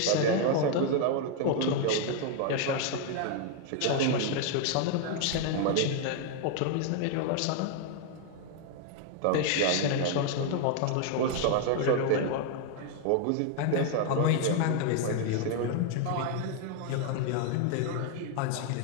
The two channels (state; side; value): different; both; correlation 0.00